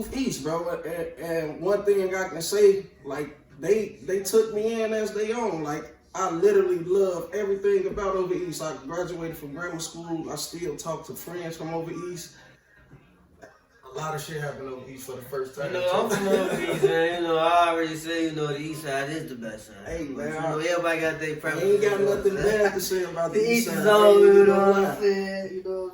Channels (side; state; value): both; identical; correlation 1.00